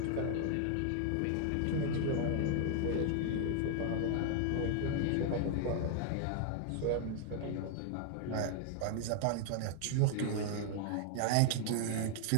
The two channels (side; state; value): both; different; correlation 0.00